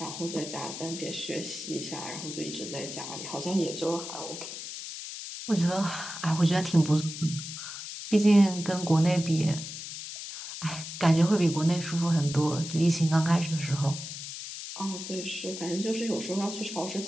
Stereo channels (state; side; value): noise; left; hiss, 9 dB below the sound